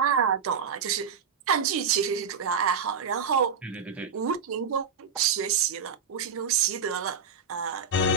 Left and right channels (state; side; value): quieter; left; 5.9 dB